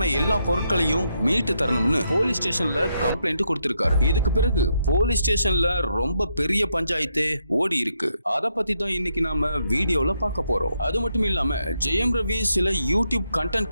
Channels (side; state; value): both; inverted; correlation -0.79